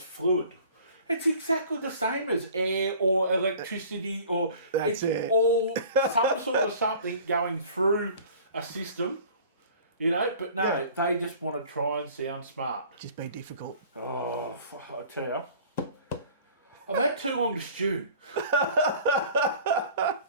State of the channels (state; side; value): inverted; both; correlation -0.47